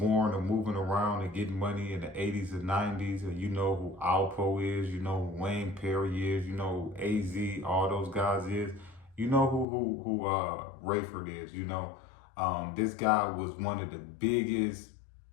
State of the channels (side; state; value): right; drops out; at 9.7 s